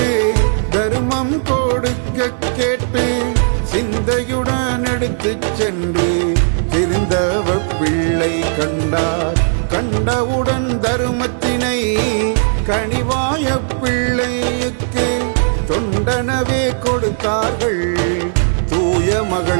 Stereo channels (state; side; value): silent; left; digital silence